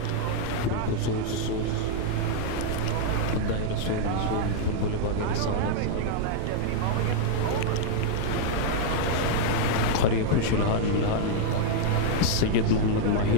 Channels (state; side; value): different; both; correlation -0.01